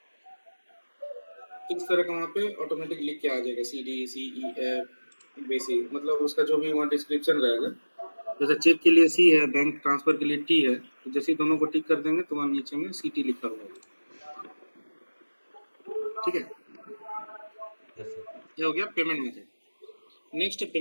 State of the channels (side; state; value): both; inverted; correlation -1.00